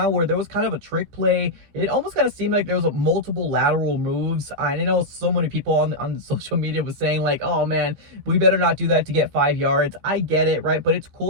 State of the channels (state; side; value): late; left; 15 ms